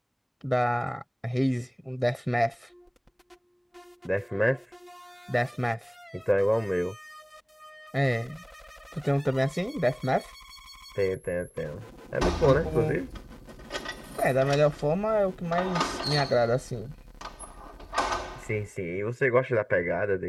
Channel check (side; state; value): both; identical; correlation 1.00